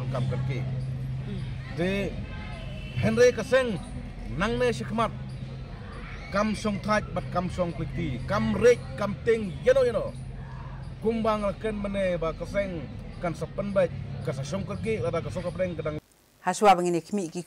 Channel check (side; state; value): both; identical; correlation 1.00